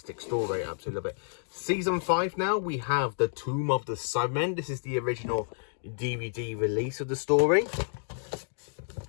story, I absolutely love it. Season 5 now, we have The Tomb of the Cybermen. This is the original DVD release of the story.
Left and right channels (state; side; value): silent; right; 58 dB below the other